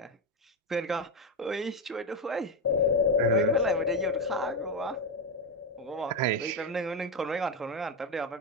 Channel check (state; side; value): normal; both; correlation 0.10